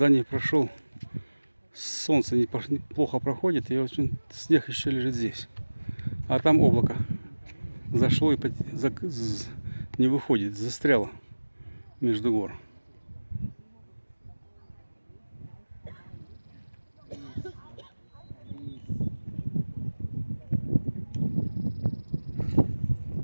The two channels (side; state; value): both; inverted; correlation -1.00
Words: не прошел. Солнце плохо проходит, и очень снег еще лежит здесь. А там облако зашло и не выходит, застряло между гор.